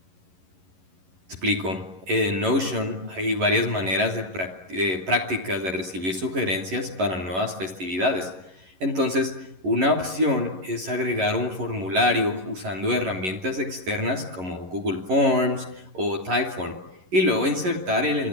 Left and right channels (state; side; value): late; left; 11 ms